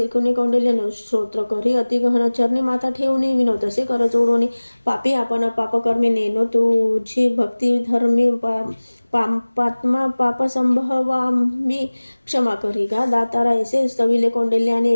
कौंडिल्य स्तोत्र करी अतिगहन चरणी माथा ठेवून विनोद असे कर जोडून पापी आपण पापकर्मी नेनो तुझी भक्ती धर्मी पात्मा पाप संभवामी क्षमा करी गा दातारा ऐसे स्तविले कौंडिल्याने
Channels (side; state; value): both; inverted; correlation -1.00